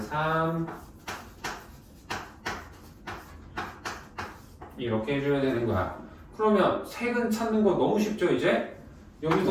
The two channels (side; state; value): both; identical; correlation 1.00